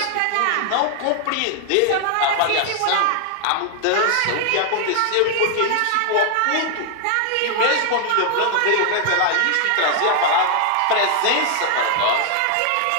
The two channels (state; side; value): different; both; correlation 0.00